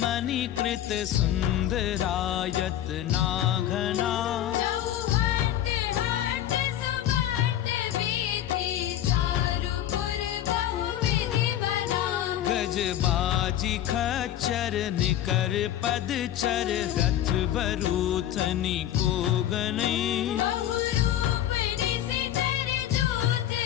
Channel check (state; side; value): quieter; right; 11.8 dB